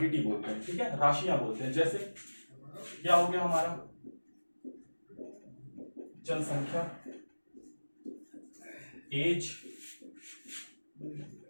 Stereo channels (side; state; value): both; inverted; correlation -1.00